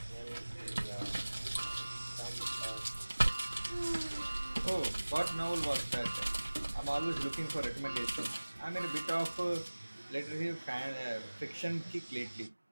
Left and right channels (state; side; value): inverted; both; correlation -1.00